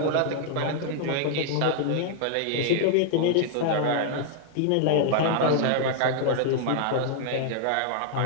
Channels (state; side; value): different; both; correlation 0.00